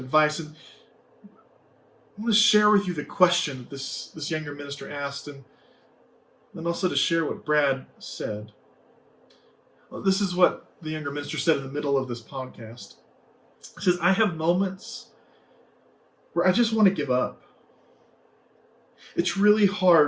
And I want to share with you the question that this younger minister asked, and then also to share what Brad said. Well, this is what the younger minister said in the middle of this podcast. He says, I have moments where I just want to give up. It's really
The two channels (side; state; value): both; identical; correlation 1.00